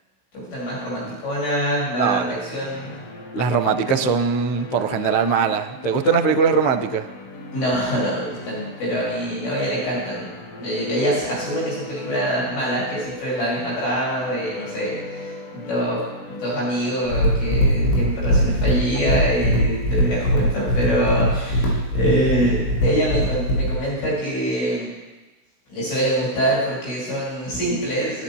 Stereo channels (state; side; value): late; right; 16 ms